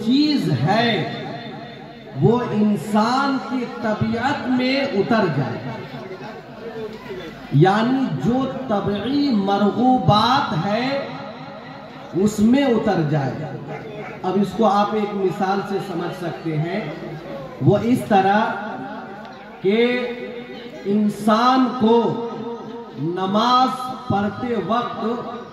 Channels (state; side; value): identical; both; correlation 1.00